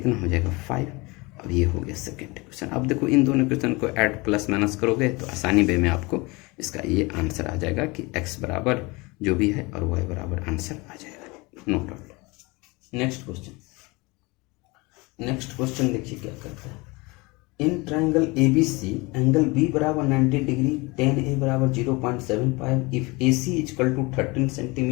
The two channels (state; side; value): quieter; right; 25.2 dB